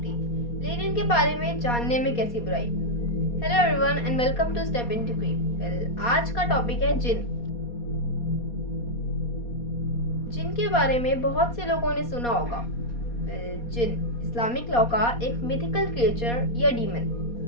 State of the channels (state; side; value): late; right; 4.2 ms